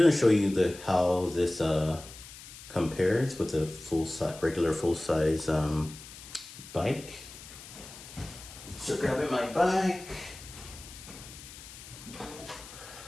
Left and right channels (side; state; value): left; noise; hiss, 16 dB below the sound